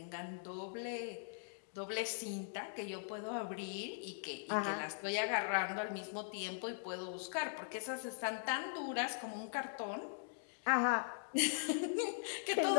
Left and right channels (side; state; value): right; silent; digital silence